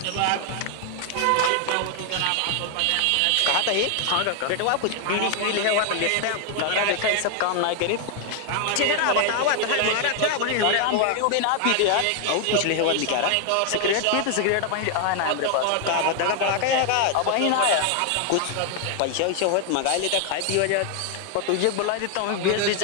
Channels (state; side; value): different; both; correlation 0.00